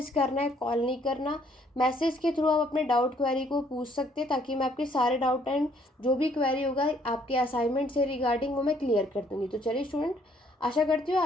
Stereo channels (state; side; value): normal; both; correlation 0.65